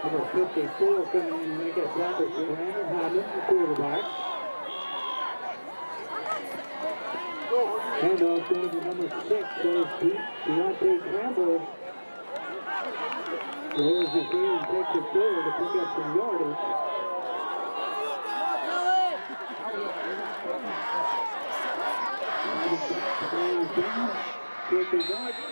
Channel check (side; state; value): both; inverted; correlation -1.00